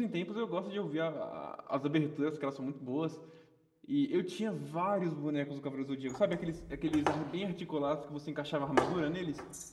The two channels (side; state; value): both; identical; correlation 1.00